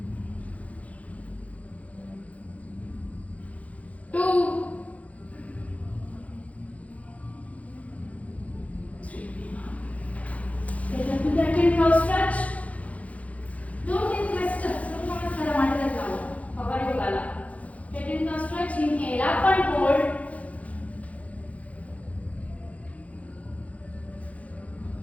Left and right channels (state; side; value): late; right; 0.067 ms